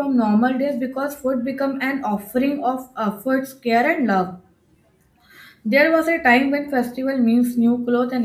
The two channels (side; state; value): both; identical; correlation 1.00